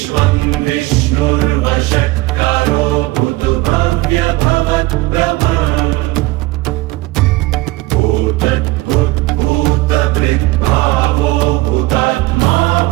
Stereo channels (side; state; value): left; quieter; 20.0 dB